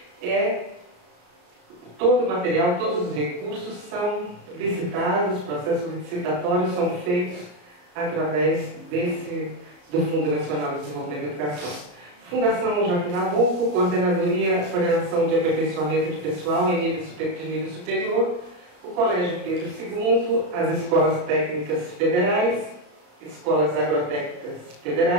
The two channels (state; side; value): late; left; 34 ms